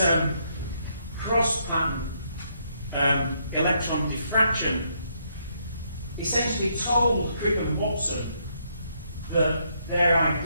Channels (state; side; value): inverted; both; correlation -0.74